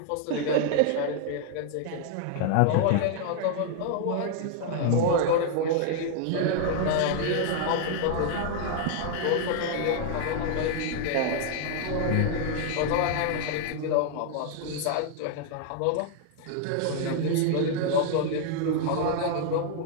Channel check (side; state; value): both; different; correlation 0.00